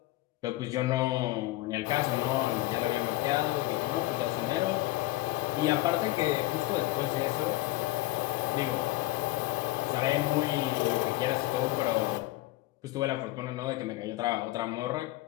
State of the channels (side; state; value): right; quieter; 18.6 dB